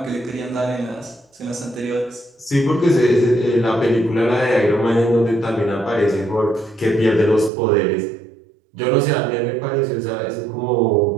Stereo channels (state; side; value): drops out; left; at 7.5 s